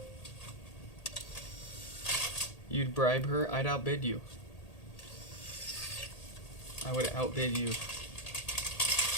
You'd bribe her? I'd outbid you. I would outbid you.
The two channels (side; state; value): right; late; 1.8 ms